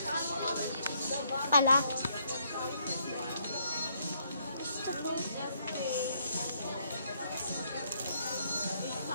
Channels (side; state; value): both; inverted; correlation -0.71